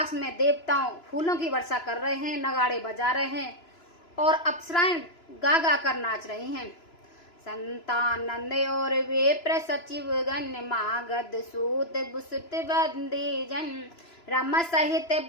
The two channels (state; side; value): late; right; 3.0 ms